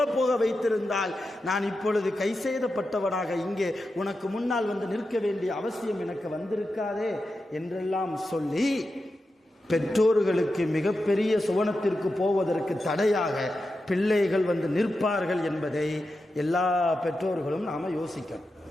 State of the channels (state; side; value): normal; both; correlation 0.90